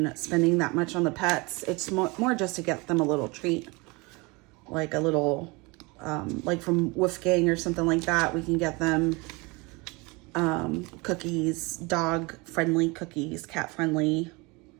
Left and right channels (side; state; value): left; quieter; 26.3 dB